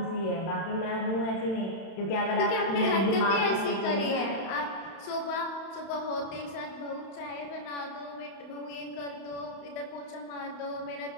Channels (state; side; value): late; right; 31 ms